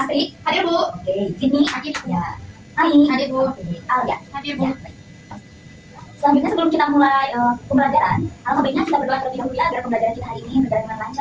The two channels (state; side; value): identical; both; correlation 1.00